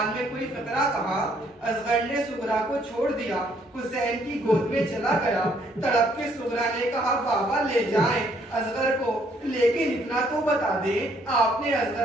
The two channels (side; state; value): both; normal; correlation 0.67